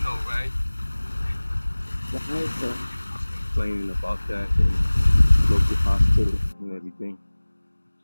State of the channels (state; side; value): inverted; both; correlation -1.00